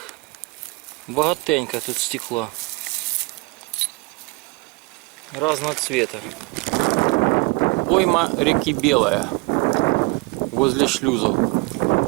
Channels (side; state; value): left; quieter; 26.5 dB